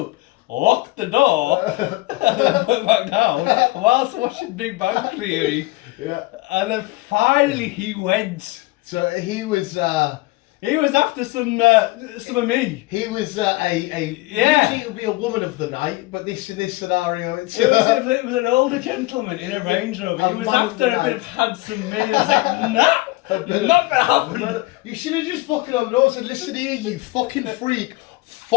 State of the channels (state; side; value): quieter; right; 21.3 dB